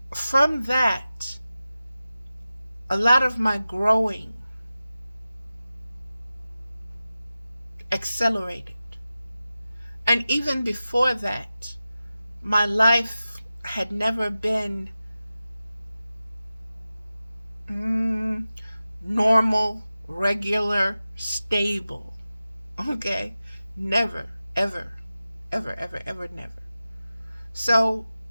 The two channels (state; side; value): inverted; both; correlation -0.95